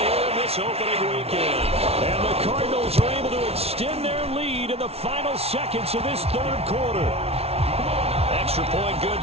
in this opening weekend. And the Cardinals are able to extend their lead in the final seconds of this 3rd quarter. Extra point good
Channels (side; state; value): left; late; 0.30 ms